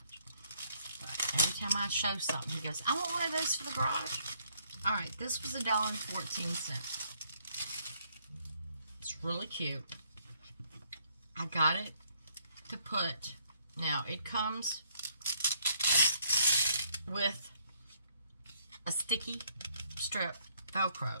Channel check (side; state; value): both; inverted; correlation -0.67